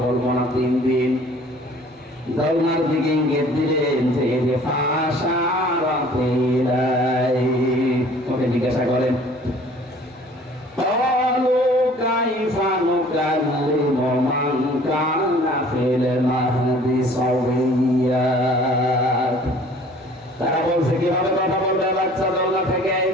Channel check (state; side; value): normal; both; correlation 0.52